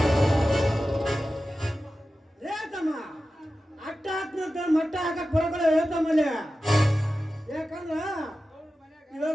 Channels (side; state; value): both; normal; correlation 0.93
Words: ಹೇಳ್ತಮ್ಮ ಅಟ್ಟ ಹಾಕ್ನಂತ ಮಟ್ಟ ಹಾಕಕ್ ಬರೋಕಲ್ಲ ಹೇಳ್ತಮ್ಮಲ್ಲಿ. ಯಾಕಂದ್ರ